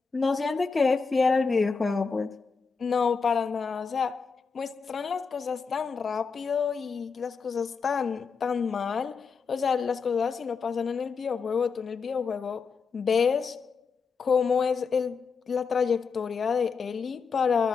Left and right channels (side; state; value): right; quieter; 5.3 dB